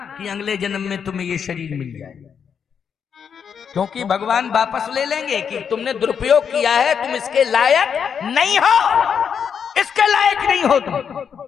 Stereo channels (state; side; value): quieter; right; 7.2 dB